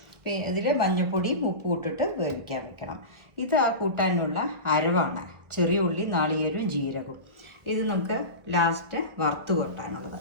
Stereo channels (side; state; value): left; late; 1.4 ms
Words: പിന്നെ ഇതിൽ മഞ്ഞൾപ്പൊടിയും ഉപ്പും ഇട്ടിട്ട് വേവിക്കാൻ വെക്കണം. ഇത് ആ കൂട്ടാനുള്ള അരവാണ്. ചെറിയ ഉള്ളി, നാളികേരവും ജീരകവും. ഇത് നമുക്ക് ലാസ്റ്റ് വറുത്ത് കൊട്ടാനുള്ളത്.